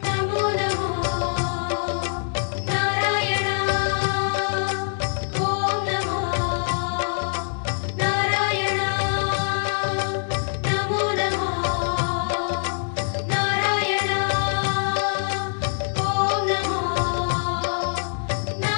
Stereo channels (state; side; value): silent; right; digital silence